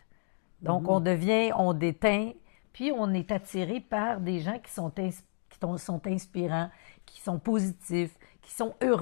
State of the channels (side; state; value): right; silent; digital silence